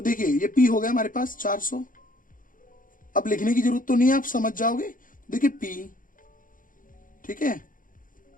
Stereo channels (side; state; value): right; late; 0.39 ms